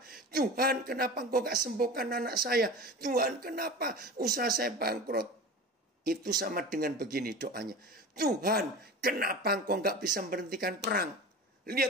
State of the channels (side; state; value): both; normal; correlation 0.32